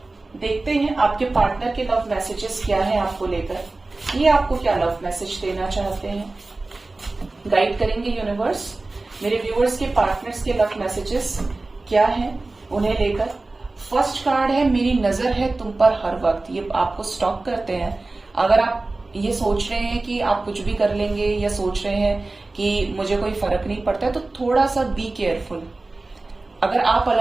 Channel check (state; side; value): quieter; left; 3.2 dB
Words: देखते हैं आपके पार्टनर के लव मैसेजेस क्या है आपको लेकर, ये आपको क्या लव मैसेज देना चाहते हैं, गाइड करेंगे यूनिवर्स। मेरे व्यूअर्स के पार्टनर्स के लव मैसेजेस क्या है उन्हें लेकर। फर्स्ट कार्ड है मेरी नजर है तुम पर हर वक्त, ये आपको स्टॉप करते हैं। अगर आप ये सोच रहे हैं कि आप कुछ भी कर लेंगे या सोच रहे हैं कि मुझे कोई फर्क नहीं पड़ता है, तो थोड़ा सा बी केयरफुल। अगर आप